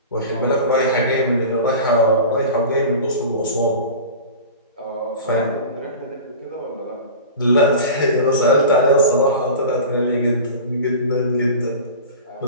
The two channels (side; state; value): both; inverted; correlation -0.34